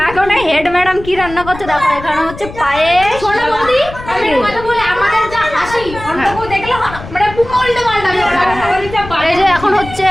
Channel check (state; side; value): noise; left; rumble, 13 dB below the sound